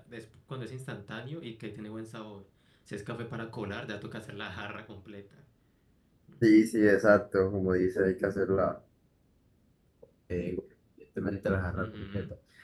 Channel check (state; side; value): identical; both; correlation 1.00